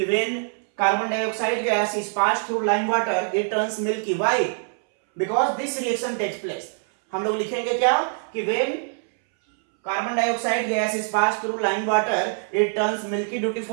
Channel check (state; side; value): silent; left; 62 dB below the other